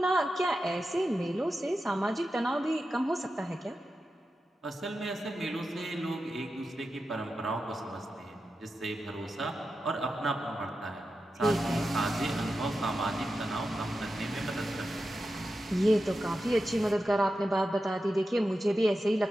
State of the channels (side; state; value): both; normal; correlation 0.91